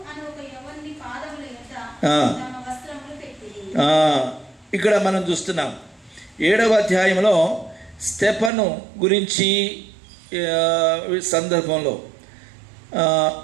ఇక్కడ మనం చూస్తున్నాం 7వ అధ్యాయంలో స్టెఫను గురించి సందర్భంలో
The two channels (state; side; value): drops out; left; at 8.5 s